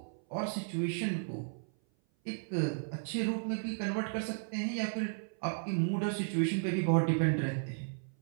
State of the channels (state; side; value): silent; left; 55 dB below the other